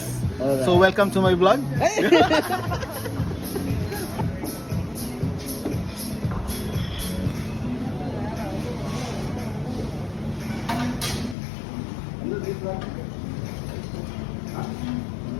Alright. So welcome to my vlog.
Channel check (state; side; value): drops out; right; at 11.4 s